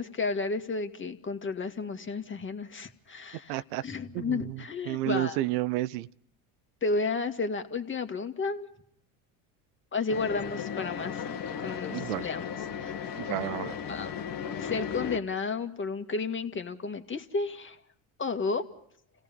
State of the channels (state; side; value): normal; both; correlation 0.07